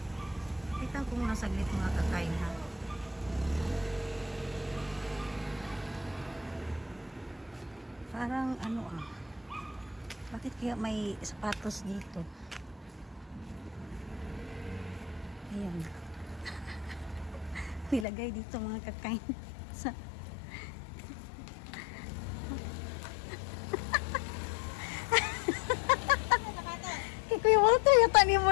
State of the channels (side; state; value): right; drops out; at 18.1 s